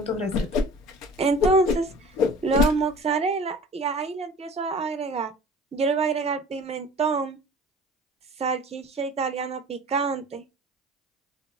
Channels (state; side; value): normal; both; correlation 0.44